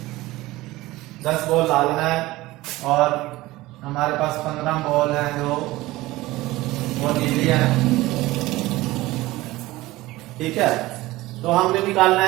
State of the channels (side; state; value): left; quieter; 18.6 dB